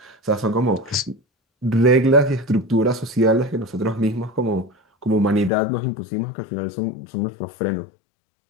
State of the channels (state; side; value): drops out; right; at 5.5 s